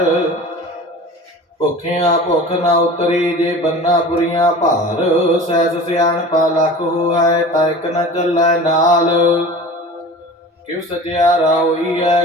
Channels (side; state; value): both; normal; correlation 0.38